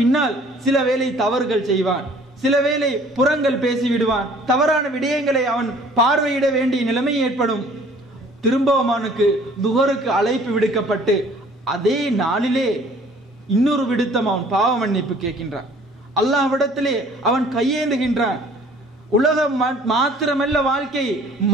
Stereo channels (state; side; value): normal; both; correlation 0.54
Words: சில வேளை தவறுகள் செய்வான், சில வேளை புறங்கள் பேசிவிடுவான், தவறான விடயங்களை அவன் பார்வையிட வேண்டிய நிலைமை ஏற்படும். திரும்பவும் அவனுக்கு துஹருக்கு அழைப்பு விடுக்கப்பட்டு அதே நாளிலே இன்னொரு விடுத்தம் அவன் பாவ மன்னிப்பு கேட்கின்றான். அல்லாஹ்விடத்திலே அவன் கையேந்துகின்றான். உலகம் மாத்திரமல்ல வாழ்க்கை,